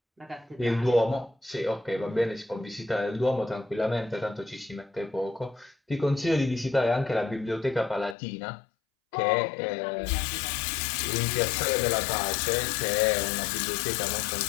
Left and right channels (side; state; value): right; drops out; at 8.2 s